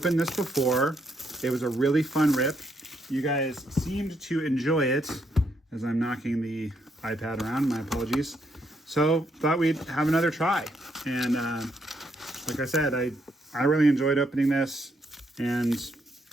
this before. It was a really fun rip. You guys seemed to enjoy it as I'm knocking the iPad around, my apologies. So thought we'd have another try. And like I said, I really enjoyed opening this, and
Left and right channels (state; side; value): normal; both; correlation 0.75